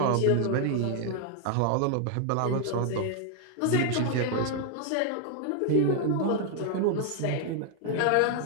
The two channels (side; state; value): both; different; correlation 0.00